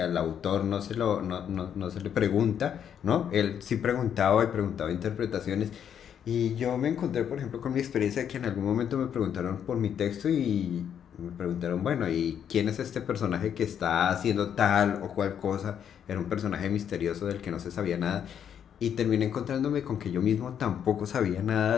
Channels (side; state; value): right; quieter; 8.7 dB